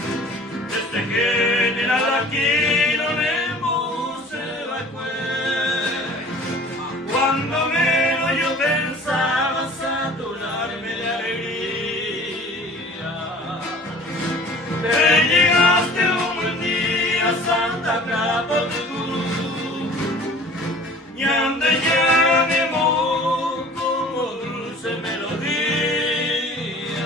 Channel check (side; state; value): both; normal; correlation 0.47